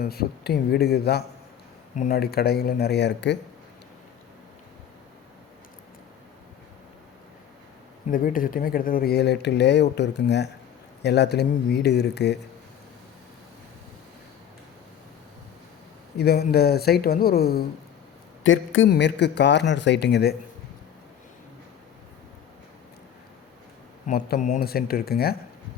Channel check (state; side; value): quieter; right; 9.4 dB